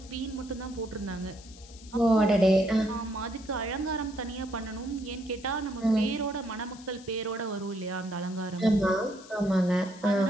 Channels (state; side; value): noise; left; hiss, 20 dB below the sound